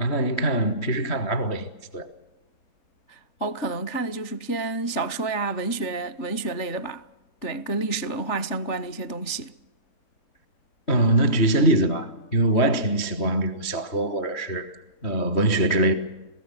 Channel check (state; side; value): late; right; 3.4 ms